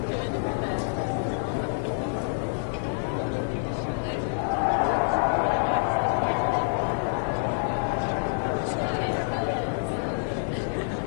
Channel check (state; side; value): silent; right; digital silence